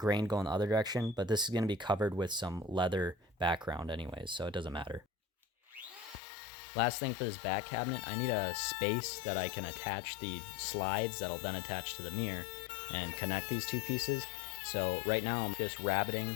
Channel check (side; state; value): right; drops out; at 6.2 s